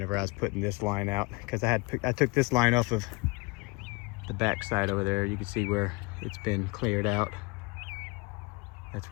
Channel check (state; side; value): quieter; right; 26.6 dB